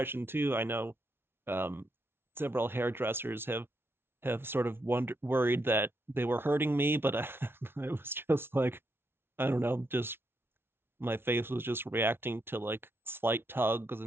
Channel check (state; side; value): late; left; 0.11 ms